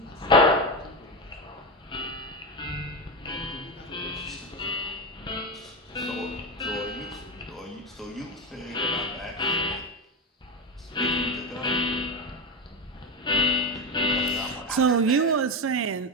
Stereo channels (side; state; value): both; normal; correlation 0.17